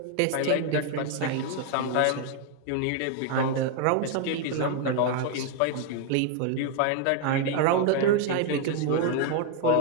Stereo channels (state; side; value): different; both; correlation 0.01